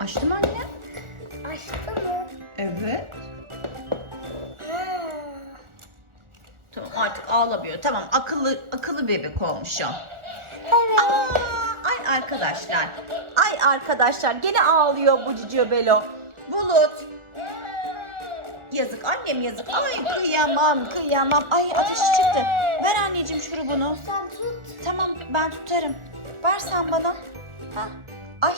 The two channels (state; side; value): late; left; 1.4 ms